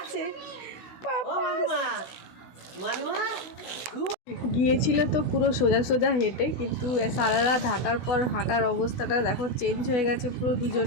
পাপা গিয়েছিল তো পুরো সোজা সোজা হেঁটে, কিন্তু সারা রাত হাঁটার পর হাঁটার অবস্থাটা দেখো চেঞ্জ হয়ে গেছে পুরো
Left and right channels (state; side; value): late; right; 16 ms